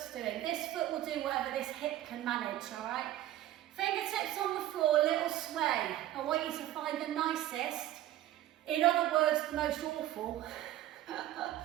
doing. This foot will do whatever this hip can manage, all right? Fingertips on the floor, a little sway. I want you to find the nicest, in other words, the most awful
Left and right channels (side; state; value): left; quieter; 13.7 dB